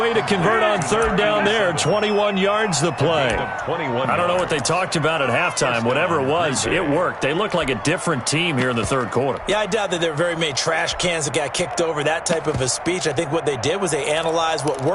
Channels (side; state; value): both; identical; correlation 1.00